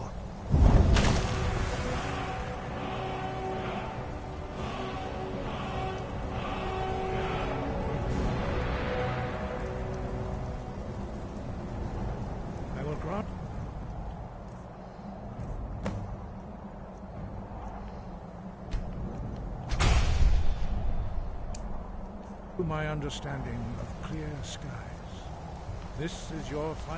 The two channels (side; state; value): both; identical; correlation 1.00